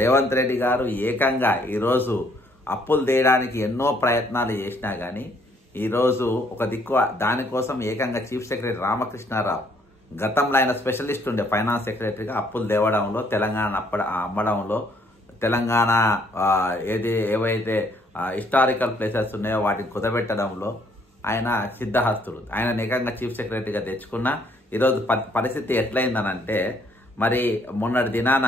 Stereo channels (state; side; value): normal; both; correlation 0.66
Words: రెడ్డి గారు ఏకంగా ఈరోజు అప్పులు తీయడానికి ఎన్నో ప్రయత్నాలు చేసినా కానీ ఈరోజు ఒక దిక్కు దానికోసం ఏకంగా చీఫ్ సెక్రటరీ రామకృష్ణారావు, గతంలో ఆయన స్పెషలిస్ట్ ఉండే ఫైనాన్స్ సెక్రటరీగా అప్పులు తేవడంలో, తెలంగాణ అమ్మడంలో, తెలంగాణ ఏవైతే హిస్టారికల్ ప్లేసెస్ ఉన్నాయో వాటిని కుదబెట్టడంలో ఆయన సిద్ధహస్తుడు. ఆయన ఏకంగా చీఫ్ సెక్రటరీగా తెచ్చుకున్న ఈరోజు పరిస్థితి ఎట్లయిందనంటే, మరి మొన్నటి దినాన